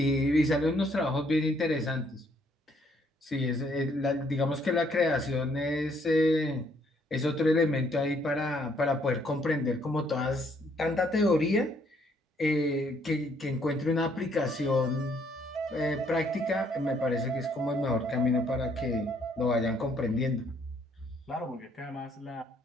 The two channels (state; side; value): normal; both; correlation 0.67